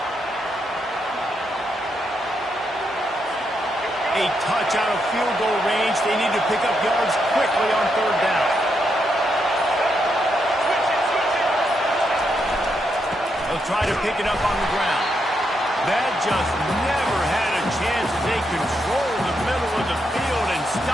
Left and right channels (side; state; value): both; normal; correlation 0.81